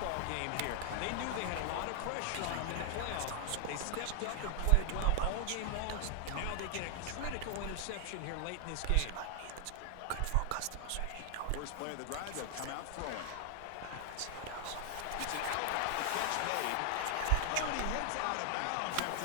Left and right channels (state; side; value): different; both; correlation 0.00